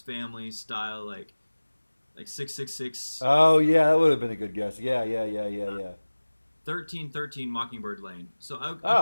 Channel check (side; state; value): both; inverted; correlation -1.00